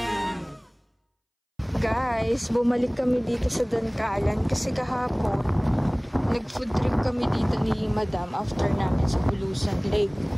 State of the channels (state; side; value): identical; both; correlation 1.00